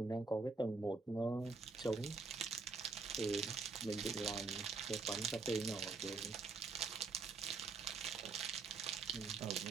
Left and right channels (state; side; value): quieter; left; 4.2 dB